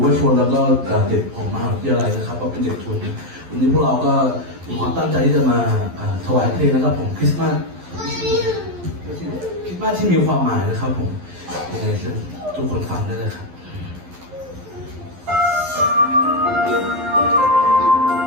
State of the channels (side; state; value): left; late; 11 ms